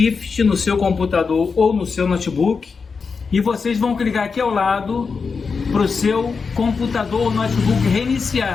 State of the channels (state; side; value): quieter; right; 5.1 dB